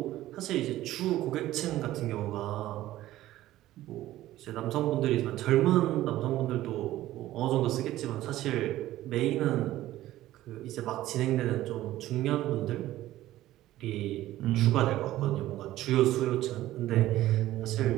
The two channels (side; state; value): left; quieter; 14.9 dB